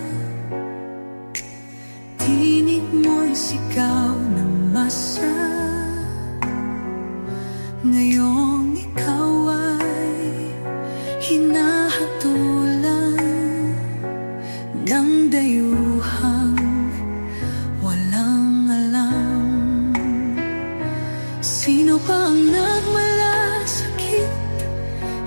Tinig mo'y sigaw ng masa. Ngayong ikaw ay hinahatulan ng dayuhang walang alam. Sino pa ang nagmalasakit?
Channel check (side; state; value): both; inverted; correlation -1.00